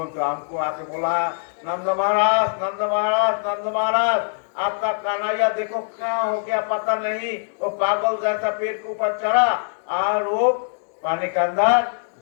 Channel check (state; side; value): silent; right; digital silence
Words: ने तो हमको आके बोला, नंद महाराज, नंद महाराज, नंद महाराज, आपका कन्हैया देखो क्या हो गया पता नहीं, वो पागल जैसा पेड़ के ऊपर चढ़ा और वो पानी के अंदर